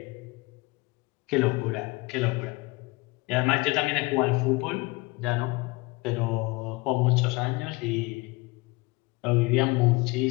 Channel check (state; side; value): quieter; right; 24.0 dB